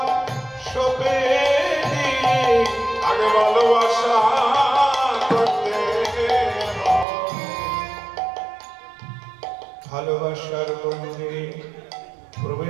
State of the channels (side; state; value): left; drops out; at 7.1 s